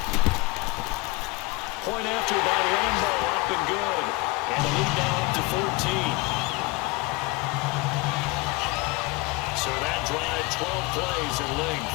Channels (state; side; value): quieter; right; 23.5 dB